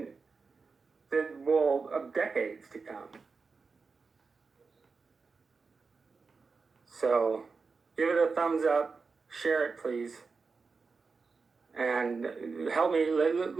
of decades to come. So, give it a thumbs up, share it please, and help me,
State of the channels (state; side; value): quieter; left; 4.6 dB